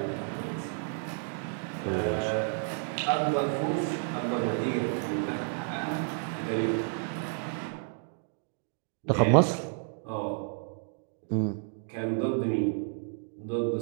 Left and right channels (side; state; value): left; silent; 57 dB below the other